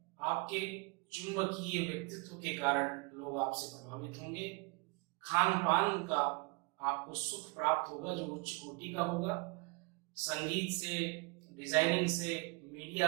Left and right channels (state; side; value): quieter; left; 28.6 dB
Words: आपके चुंबकीय व्यक्तित्व के कारण लोग आपसे प्रभावित होंगे। खान पान का आपको सुख प्राप्त होगा जो उच्च कोटि का होगा। संगीत से, डिजाइनिंग से,